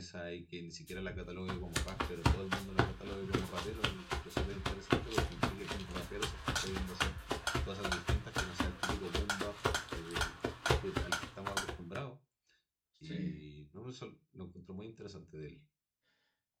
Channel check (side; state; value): both; identical; correlation 1.00